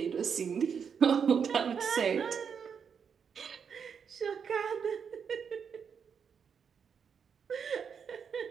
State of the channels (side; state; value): left; quieter; 6.8 dB